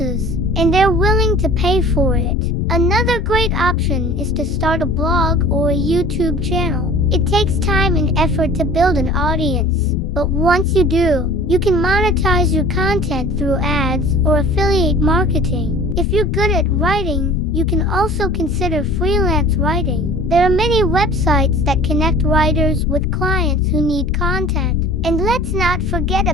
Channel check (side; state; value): both; normal; correlation 0.44